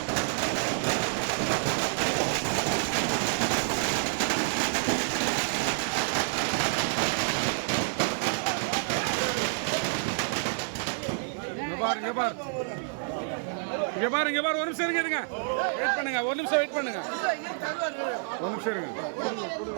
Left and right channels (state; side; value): silent; left; digital silence